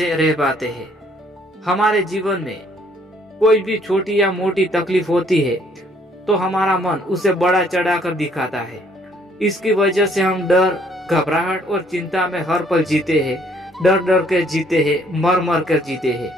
रह पाते हैं। हमारे जीवन में कोई भी छोटी या मोटी तकलीफ होती है तो हमारा मन उसे बड़ा चढ़ाकर दिखाता है। इसकी वजह से हम डर, घबराहट और चिंता में हर पल जीते हैं, डर डर कर जीते हैं, मर मर कर जीते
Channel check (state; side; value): normal; both; correlation 0.64